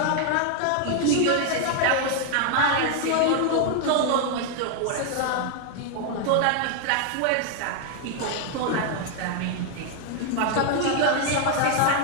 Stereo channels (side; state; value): both; different; correlation 0.00